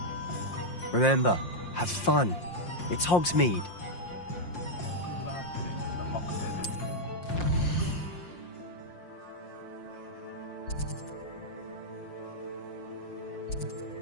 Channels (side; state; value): right; late; 5.7 ms